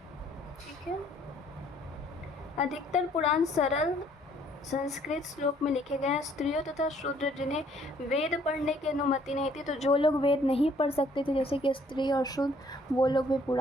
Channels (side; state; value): both; normal; correlation 0.62